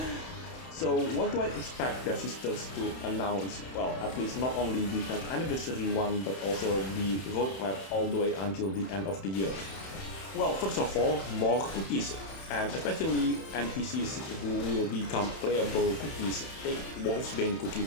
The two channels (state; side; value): late; right; 31 ms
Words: So what do I expect Devsisters to announce? Well, at least not only the 10th anniversary one, but also the roadmap all the way until the end of the year. Well, first of all, more cookies, and especially NPCs who will become playable cookies. Take Wolfsbane Cookie